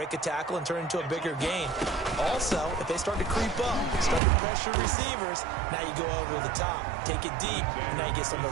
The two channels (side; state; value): left; drops out; at 4.2 s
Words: a tackle and turn it into a bigger gain. Also, if they start to creep up, start to pressure receivers, now you go over the top, take it deep, and now you get some of